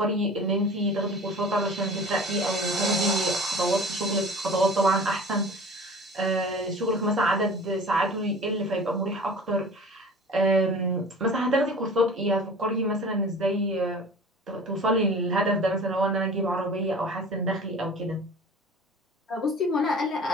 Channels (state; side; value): normal; both; correlation 0.42